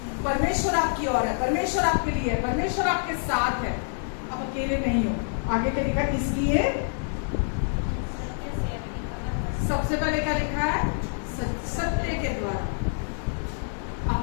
परमेश्वर आपकी ओर है, परमेश्वर आपके लिए है, परमेश्वर आपके साथ है, आप अकेले नहीं हो। आगे क्या लिखा है? इसलिए सबसे पहले क्या लिखा है? सत्य के द्वारा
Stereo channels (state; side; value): silent; right; digital silence